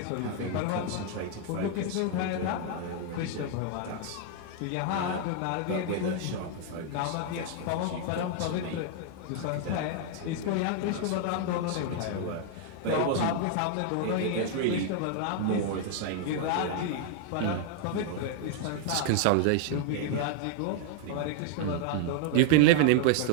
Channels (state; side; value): different; both; correlation 0.00